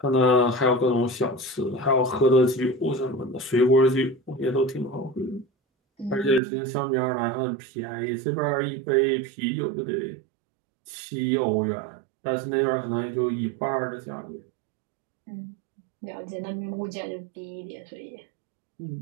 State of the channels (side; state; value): left; drops out; at 6.4 s